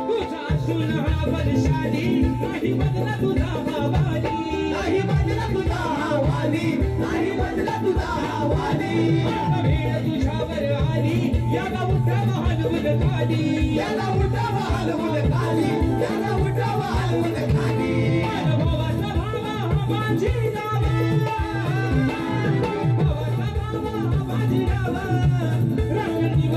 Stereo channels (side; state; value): both; identical; correlation 1.00